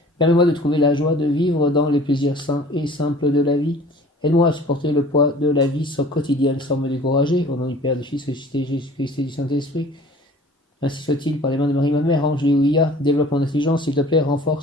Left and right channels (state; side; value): normal; both; correlation 0.48